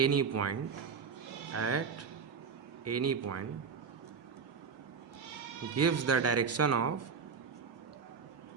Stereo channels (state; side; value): quieter; left; 6.0 dB